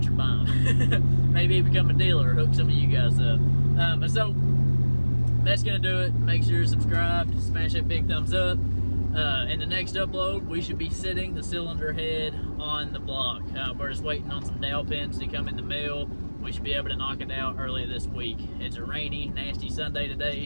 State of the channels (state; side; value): inverted; both; correlation -1.00